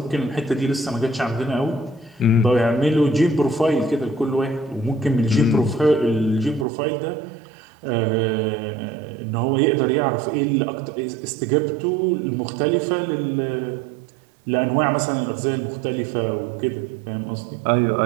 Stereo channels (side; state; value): left; drops out; at 6.7 s